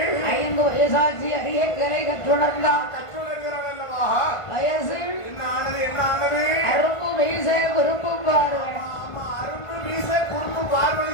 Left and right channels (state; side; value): late; right; 1.5 ms